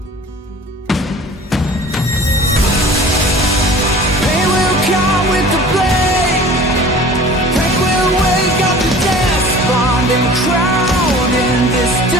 And crowned in this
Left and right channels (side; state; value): both; normal; correlation 0.44